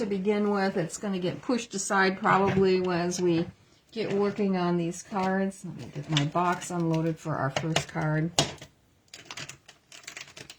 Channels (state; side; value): identical; both; correlation 1.00